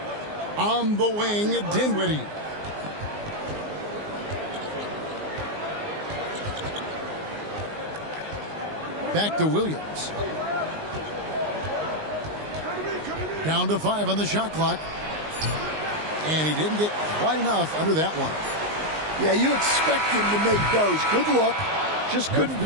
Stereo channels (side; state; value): left; late; 19 ms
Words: On the wing, Dinwiddie. Back to Williams. Down to 5 on the shot clock. And he didn't get quite enough under that one. Yeah, you expect him to make those. Good look. Just couldn't